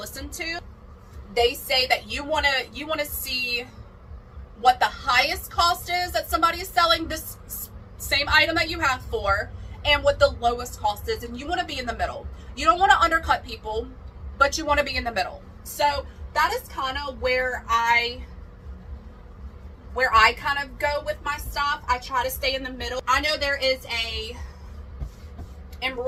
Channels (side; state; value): both; identical; correlation 1.00